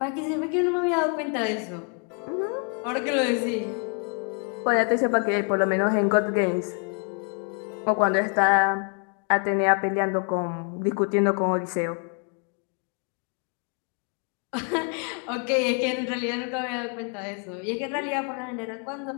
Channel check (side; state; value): right; quieter; 39.3 dB